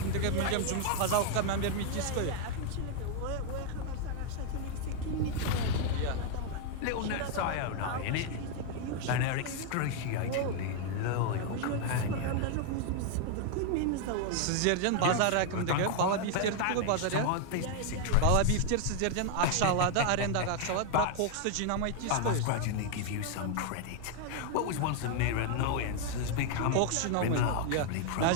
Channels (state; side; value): different; both; correlation 0.00